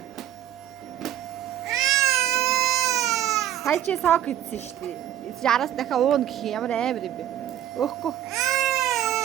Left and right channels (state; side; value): quieter; left; 11.5 dB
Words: Сая чи сок идсэн шүү дээ. Яраас дахиад уун гэх юм ямар амар юм бэ? Өөхгүй.